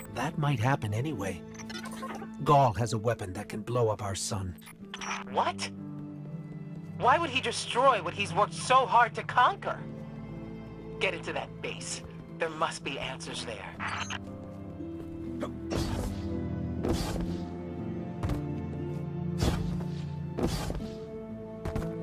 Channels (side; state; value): both; identical; correlation 1.00